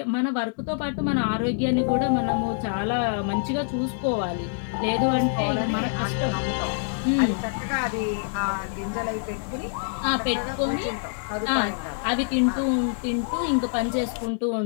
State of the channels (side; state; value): right; silent; digital silence